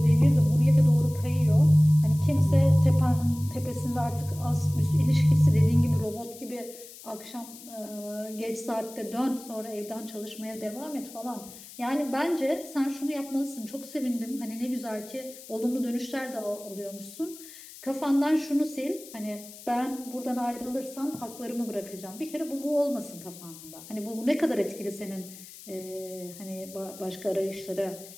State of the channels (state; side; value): noise; left; hiss, 17 dB below the sound